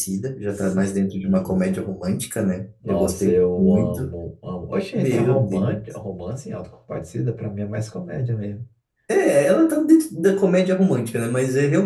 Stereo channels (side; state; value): both; identical; correlation 1.00